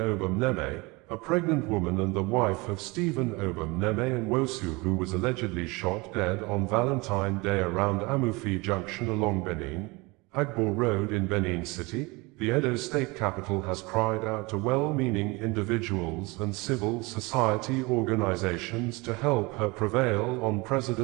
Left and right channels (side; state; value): left; quieter; 25.2 dB